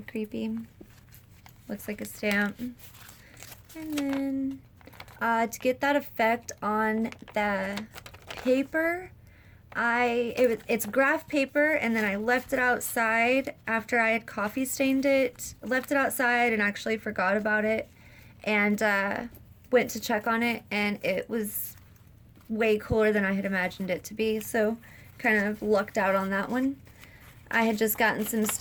creepy. Looks like a stamp. And then to get that effect on the paper, it's graph paper, and then I left it outside after I had coffee stained it. Left it outside and actually forgot about it, and went to check on it, and it was way cooler than I had imagined it to be, so kind of lucked out on that one. I had just gotten some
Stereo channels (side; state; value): both; identical; correlation 1.00